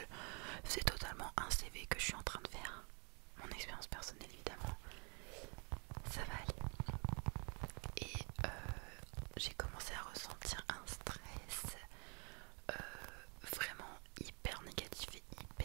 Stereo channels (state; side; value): quieter; left; 35.0 dB